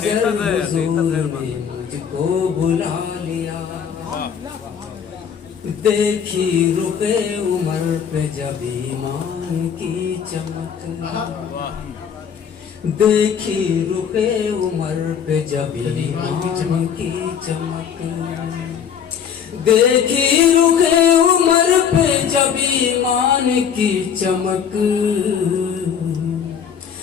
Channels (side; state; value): right; quieter; 7.7 dB